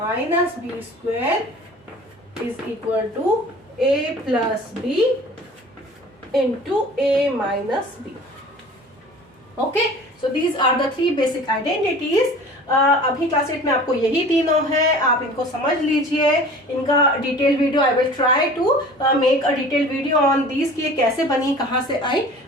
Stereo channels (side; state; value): both; normal; correlation 0.43